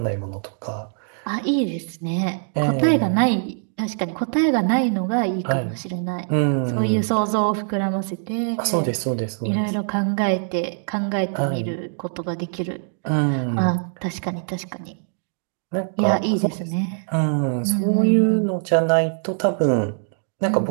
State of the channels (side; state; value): left; silent; digital silence